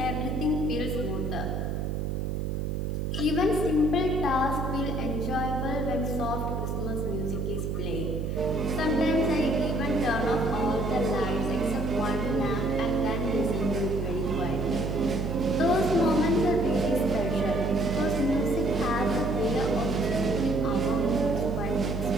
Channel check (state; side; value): noise; right; hum, 1 dB below the sound